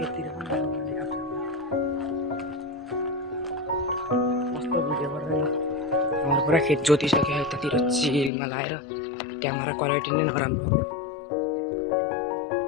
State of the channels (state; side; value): drops out; right; at 8.3 s